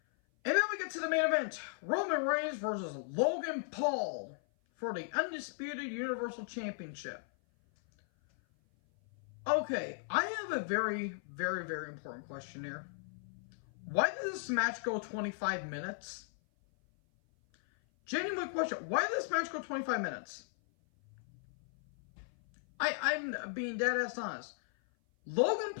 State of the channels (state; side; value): silent; right; 53 dB below the other